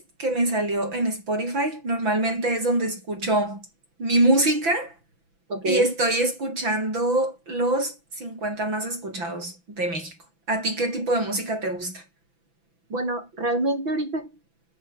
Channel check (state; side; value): late; left; 6.0 ms